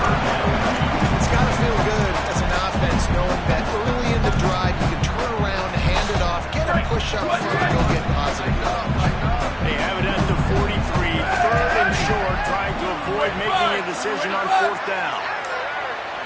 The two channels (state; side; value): identical; both; correlation 1.00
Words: decision on fourth down.